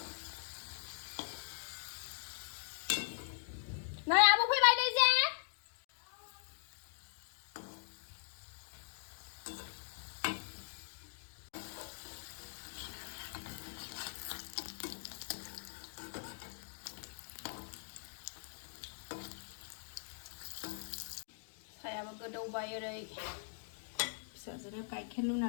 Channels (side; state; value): right; silent; digital silence